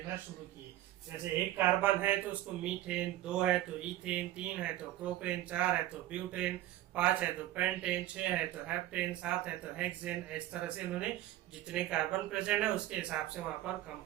शुरू किए। जैसे एक कार्बन है तो उसको मीथेन, 2 है तो इथेन, 3 है तो प्रोपेन, 4 है तो ब्यूटेन, 5 है तो पेंटेन, 6 है तो हेप्टेन, 7 है तो हेक्सेन। इस तरह से उन्होंने जितने कार्बन प्रेजेंट है उसके हिसाब से वहां पर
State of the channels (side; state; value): left; quieter; 14.5 dB